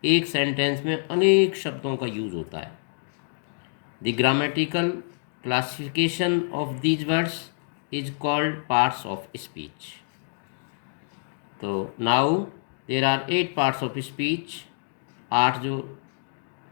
एक सेंटेंस में अनेक शब्दों का यूज होता है। The grammatical classification of these words is called parts of speech. तो now there are 8 parts of speech. 8 जो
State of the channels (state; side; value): silent; right; digital silence